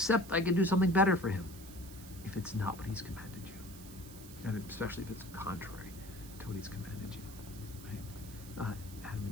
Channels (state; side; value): noise; right; hiss, 17 dB below the sound